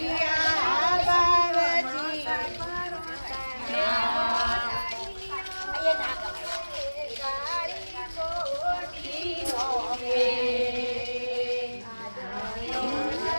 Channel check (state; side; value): inverted; both; correlation -1.00